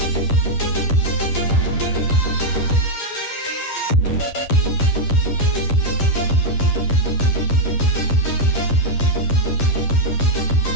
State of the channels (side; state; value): right; late; 10 ms